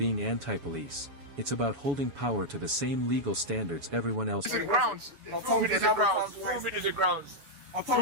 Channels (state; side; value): late; left; 7.1 ms